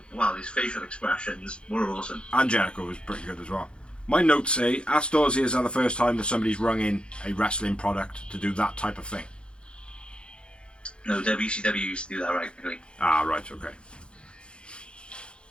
well. His facial expressions were awesome. And Jericho was pretty good as well. My notes say, Ask Dorsey is the first time that somebody's rung in a wrestling product to do that type of thing. No, WCW used to do that regularly. Ah, right, okay.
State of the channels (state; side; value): late; right; 0.055 ms